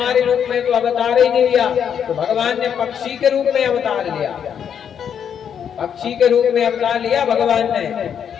रूप में तो अवतार ही नहीं लिया। तो भगवान ने पक्षी के रूप में अवतार लिया। पक्षी के रूप में अवतार लिया भगवान ने।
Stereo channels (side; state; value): right; quieter; 8.2 dB